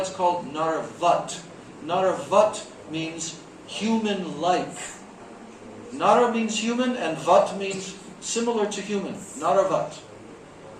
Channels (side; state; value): both; identical; correlation 1.00